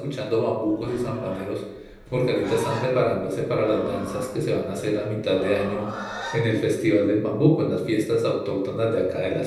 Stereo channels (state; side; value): identical; both; correlation 1.00